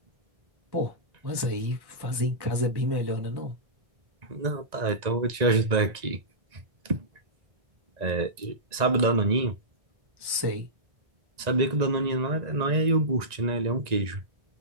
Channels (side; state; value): left; late; 1.9 ms